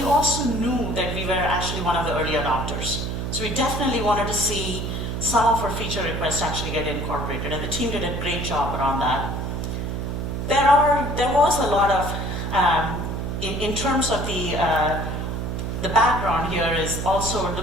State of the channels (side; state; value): right; noise; hum, 3 dB below the sound